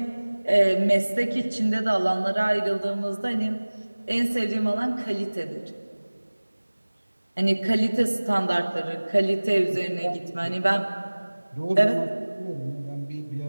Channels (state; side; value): inverted; both; correlation -1.00